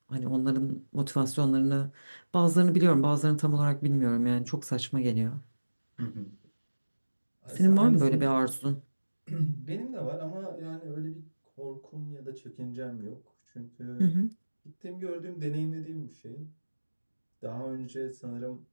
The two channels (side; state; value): both; inverted; correlation -1.00